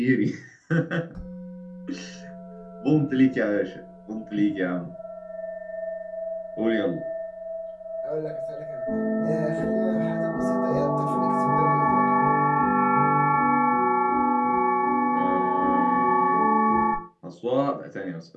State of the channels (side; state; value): both; identical; correlation 1.00